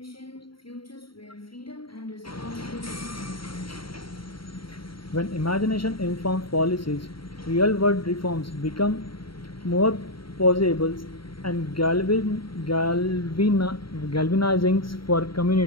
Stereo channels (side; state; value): right; late; 0.74 ms